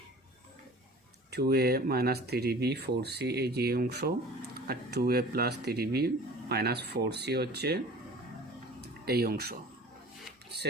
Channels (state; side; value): normal; both; correlation 0.43